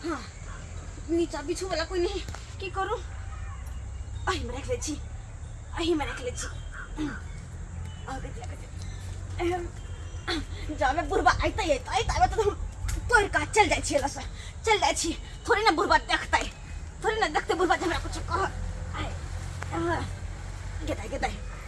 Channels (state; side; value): identical; both; correlation 1.00